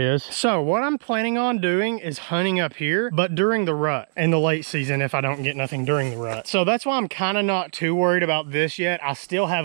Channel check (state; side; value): silent; left; digital silence